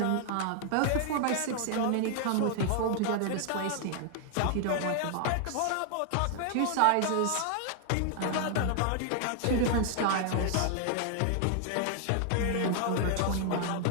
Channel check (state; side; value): different; both; correlation 0.00